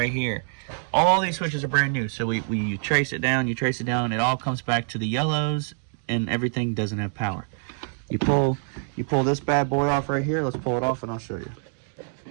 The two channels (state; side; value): silent; left; 61 dB below the other